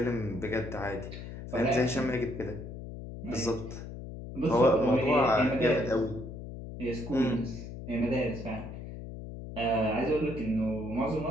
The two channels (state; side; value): noise; left; hum, 10 dB below the sound